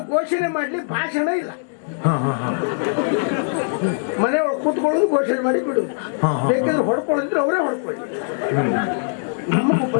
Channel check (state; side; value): silent; right; digital silence